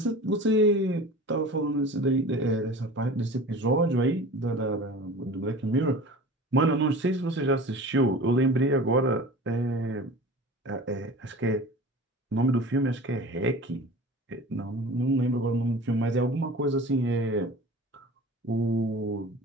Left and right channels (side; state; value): both; normal; correlation 0.38